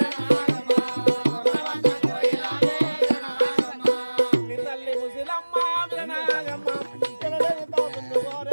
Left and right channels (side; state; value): both; inverted; correlation -1.00